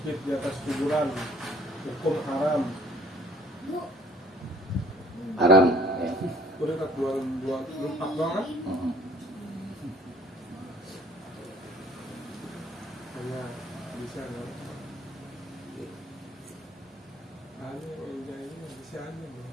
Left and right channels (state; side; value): normal; both; correlation 0.56